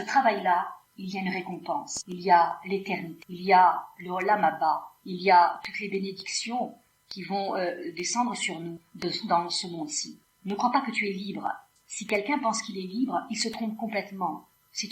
travail-là, il y a une récompense. Il y a l'éternité. Il y a le Olam Haba. Il y a toutes les bénédictions qui vont descendre sur nous dans ce monde-ci. Ne crois pas que tu es libre. Si quelqu'un pense qu'il est libre, il se trompe complètement.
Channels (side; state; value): both; identical; correlation 1.00